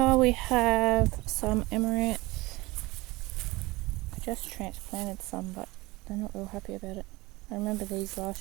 we have some Emirates. I just transplanted some, but they're not real happy about it. I remember these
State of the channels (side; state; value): left; quieter; 21.5 dB